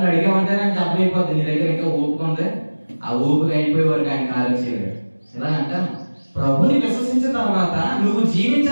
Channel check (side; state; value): both; inverted; correlation -1.00